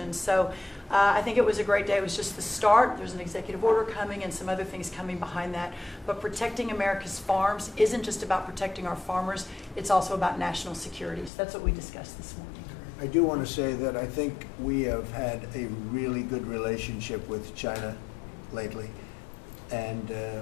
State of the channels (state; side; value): drops out; right; at 11.3 s